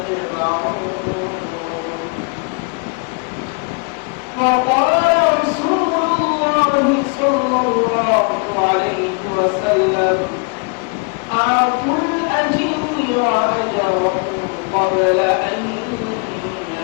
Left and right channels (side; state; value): right; quieter; 34.7 dB